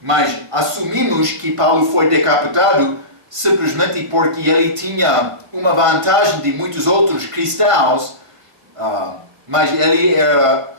Mas assumimos que Paulo foi decapitado simplesmente porque ele tinha uma vantagem de muitos outros cristãos, mas ele era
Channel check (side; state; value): left; late; 1.5 ms